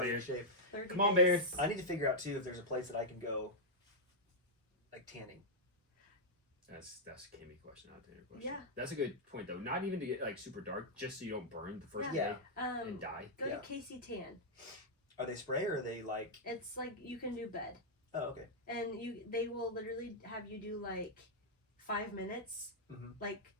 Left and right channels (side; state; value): both; normal; correlation -0.06